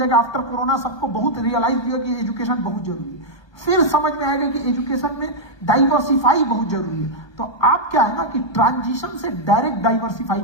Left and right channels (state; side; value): late; right; 1.3 ms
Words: आफ्टर कोरोना सबको बहुत रियलाइज होगा कि एजुकेशन बहुत जरूरी है। फिर समझ में आएगा कि एजुकेशन में डाइवर्सिफाई बहुत जरूरी है। तो आप क्या है ना कि ट्रांजिशन से डायरेक्ट डाइवर्सिफाई